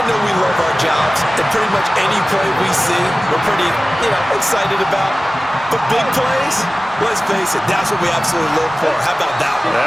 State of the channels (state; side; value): normal; both; correlation 0.97